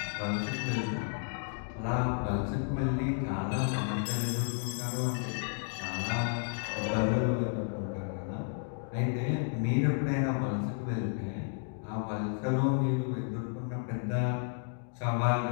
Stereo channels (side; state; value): right; silent; 56 dB below the other